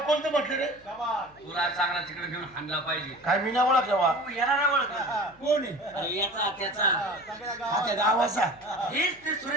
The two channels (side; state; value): left; noise; hum, 28 dB below the sound